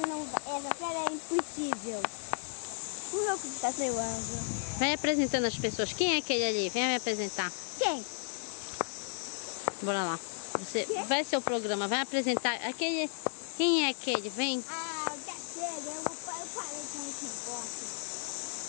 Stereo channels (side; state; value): right; silent; digital silence